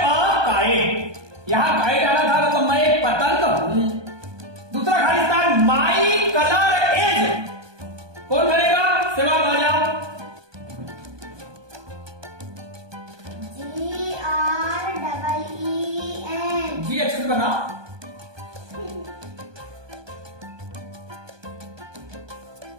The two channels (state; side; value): late; left; 1.2 ms